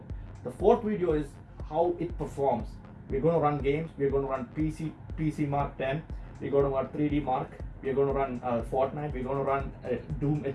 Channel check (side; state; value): both; identical; correlation 1.00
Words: The fourth video is how it performs. We're going to run games. We're going to run PC Mark 10. We're going to run 3D Mark. We're going to run Fortnite. We're going to run Doom